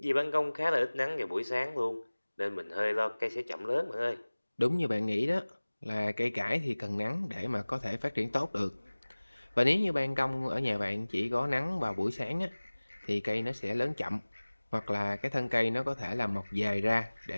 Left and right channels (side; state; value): both; inverted; correlation -1.00